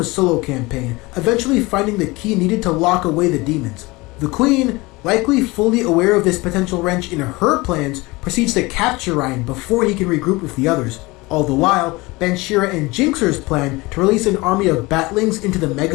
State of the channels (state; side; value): quieter; right; 22.8 dB